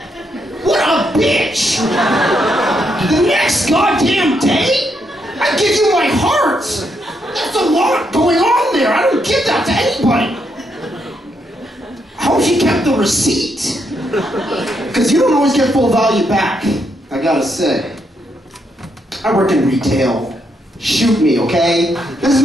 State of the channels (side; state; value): both; normal; correlation 0.78